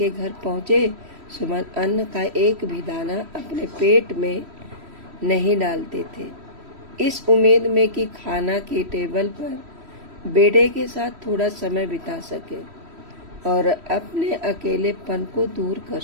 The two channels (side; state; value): left; late; 3.1 ms